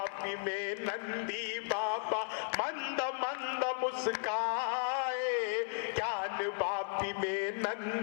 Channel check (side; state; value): right; silent; 54 dB below the other